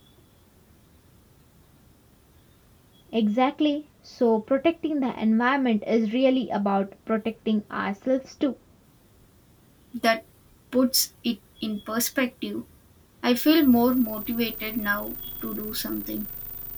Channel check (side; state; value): both; identical; correlation 1.00